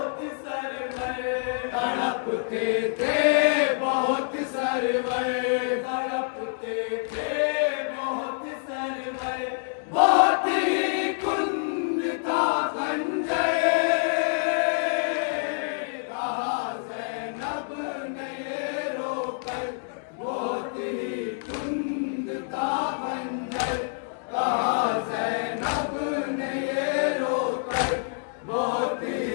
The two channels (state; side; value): silent; right; digital silence